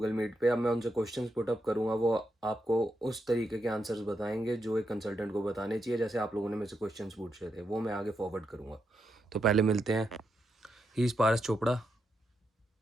मीट पे। अब मैं उनसे क्वेश्चंस पुट अप करूंगा, वो आपको उस तरीके के आंसर्स बताएंगे जो एक कंसल्टेंट को बताने चाहिए। जैसे आप लोगों ने मेरे से क्वेश्चंस पूछे थे वो मैं आगे फॉरवर्ड करूंगा। तो पहले मिलते हैं। He is Paras Chopra.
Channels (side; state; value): both; normal; correlation 0.83